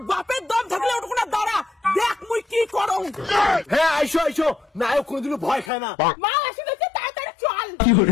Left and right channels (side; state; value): right; drops out; at 5.7 s